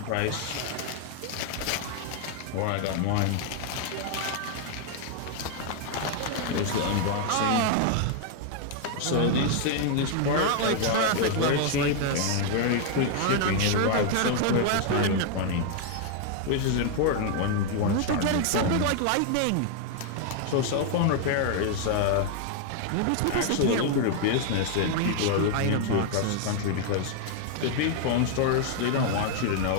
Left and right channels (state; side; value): different; both; correlation 0.00